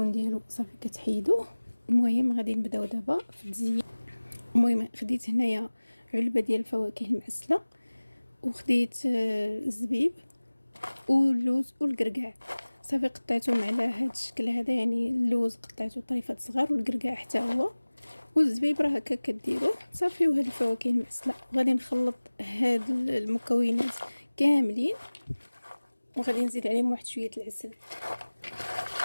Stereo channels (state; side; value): inverted; both; correlation -1.00